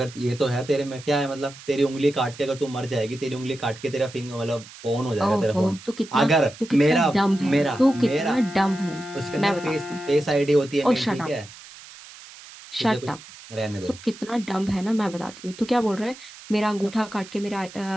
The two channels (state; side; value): noise; right; hiss, 18 dB below the sound